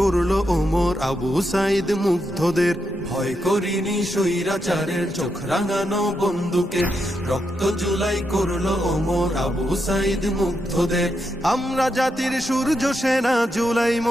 ওমর আবু সাইদ মুগ্ধদের। ভয় করিনি স্বৈরাচারের চোখ রাঙানো বন্দুকের, রক্ত জুলাই করলো ওমর আবু সাইদ মুগ্ধদের। আমরা জাতির সূর্য সেনা, জুলাই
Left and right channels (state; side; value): normal; both; correlation 0.83